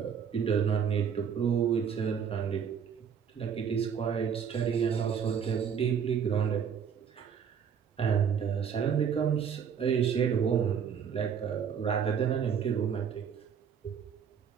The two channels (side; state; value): left; quieter; 7.5 dB